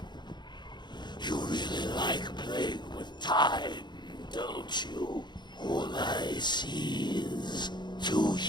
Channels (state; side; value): late; right; 0.21 ms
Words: you really like playing with time, don't you? All I see is two